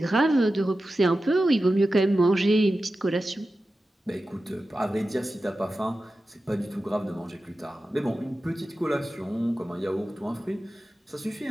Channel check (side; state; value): both; normal; correlation 0.93